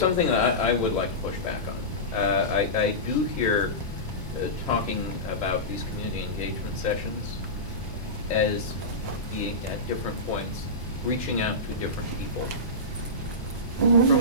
that I would like to push back on. I do hear talking about these community engagement sessions as being at different points, reaching out to different people. From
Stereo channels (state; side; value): normal; both; correlation -0.18